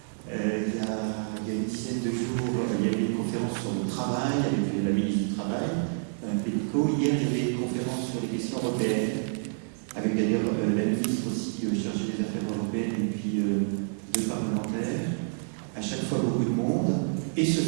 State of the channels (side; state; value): left; silent; digital silence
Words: Il y a une dizaine de jours, il y avait une conférence sur le travail avec la ministre du Travail, Mme Pénicaud. Hier, il y avait une conférence sur les questions européennes, avec d'ailleurs la ministre aussi chargée des affaires européennes et puis deux parlementaires. À chaque fois, beaucoup de monde. Et ce